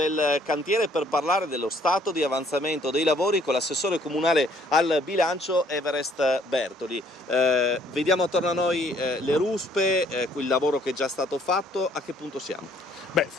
cantiere per parlare dello stato di avanzamento dei lavori con l'assessore comunale al bilancio Everest Bertoli. Vediamo attorno a noi le ruspe, il lavoro che è già stato fatto. A che punto siamo? Beh,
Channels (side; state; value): both; normal; correlation 0.63